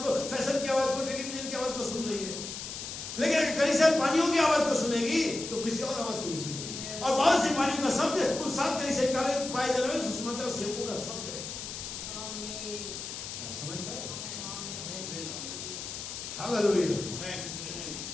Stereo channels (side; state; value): left; noise; hiss, 8 dB below the sound